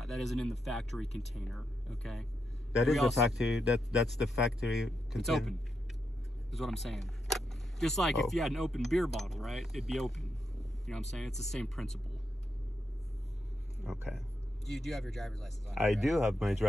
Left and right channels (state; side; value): normal; both; correlation 0.83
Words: That isn't in the factory container. Okay. That is the factory. That's the factory container. It's open. Is what I'm saying. Just like if you had an open beer bottle, right? It'd be open. You know what I'm saying? It's the same principle. Okay. You do have your driver's license on. I do have my